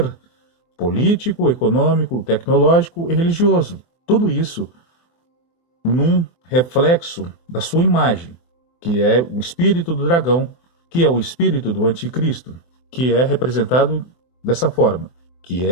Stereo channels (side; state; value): right; late; 24 ms